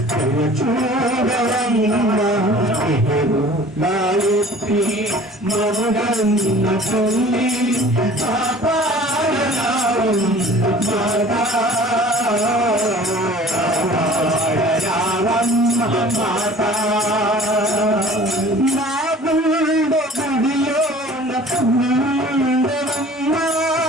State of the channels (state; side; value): normal; both; correlation 0.47